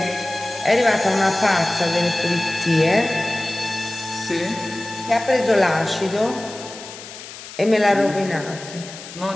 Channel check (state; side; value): noise; left; hiss, 14 dB below the sound